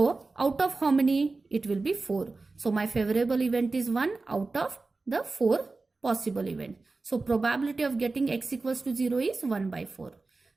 out of how many? It will be 4. So my favorable event is 1 out of the 4 possible events. So probability of getting x equals to 0 is 1 by 4.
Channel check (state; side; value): quieter; left; 3.7 dB